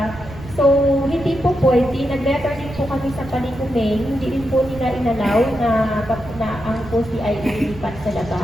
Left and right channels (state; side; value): noise; right; rumble, 14 dB below the sound